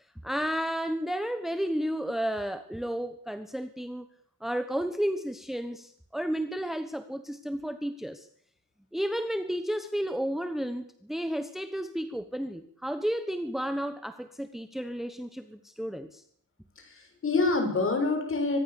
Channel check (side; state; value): both; normal; correlation 0.73